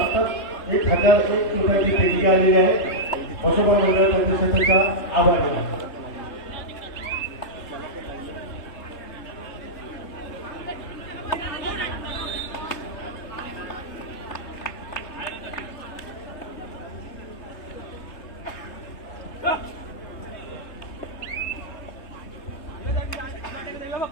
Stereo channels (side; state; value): right; late; 3.3 ms